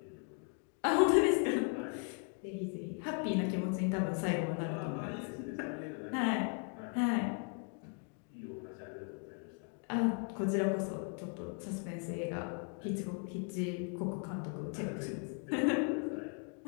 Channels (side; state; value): right; quieter; 39.2 dB